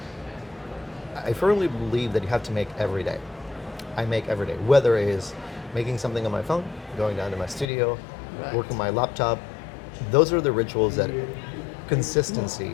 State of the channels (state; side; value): drops out; right; at 7.7 s